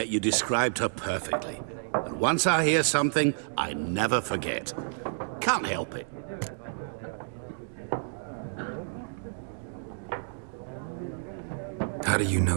you described her perfectly. And once I hear something, I never forget. Can't help it. How do you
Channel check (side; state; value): left; silent; digital silence